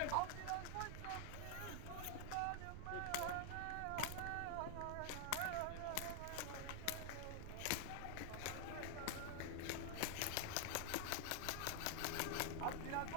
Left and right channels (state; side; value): different; both; correlation 0.00